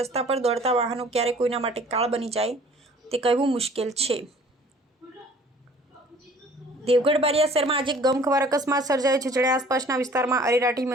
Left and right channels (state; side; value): normal; both; correlation 0.52